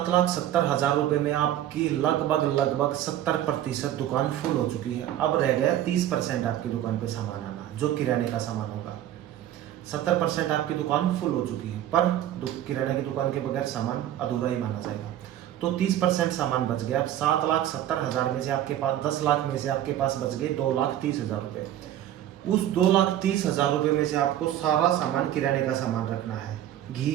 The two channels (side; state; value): left; quieter; 12.0 dB